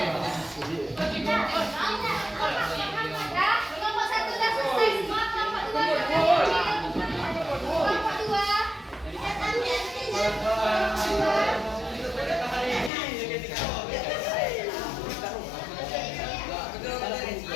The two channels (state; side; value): drops out; right; at 12.9 s